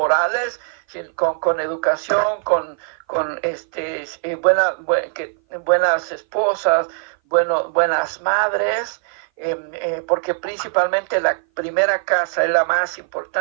sino con educación, con buenas esposas, buenas madres, porque principalmente la primera casa es la más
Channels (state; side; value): silent; left; 58 dB below the other